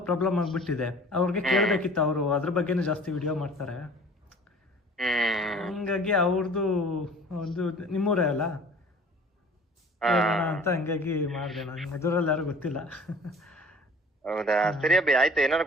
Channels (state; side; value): normal; both; correlation 0.47